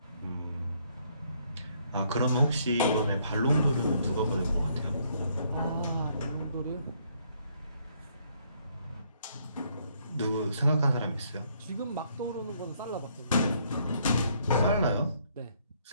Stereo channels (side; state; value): both; inverted; correlation -0.68